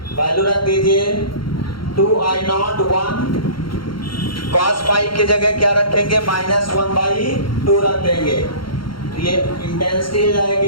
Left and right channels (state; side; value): late; right; 0.73 ms